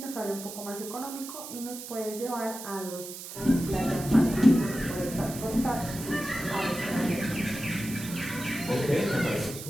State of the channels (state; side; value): noise; right; hiss, 11 dB below the sound